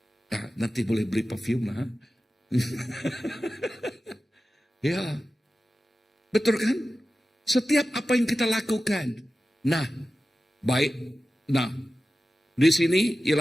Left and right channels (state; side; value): normal; both; correlation 0.94